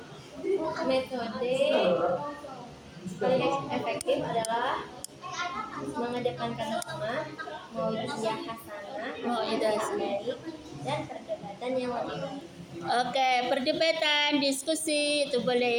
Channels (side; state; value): both; identical; correlation 1.00